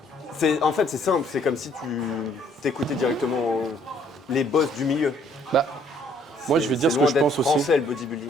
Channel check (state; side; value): normal; both; correlation 0.63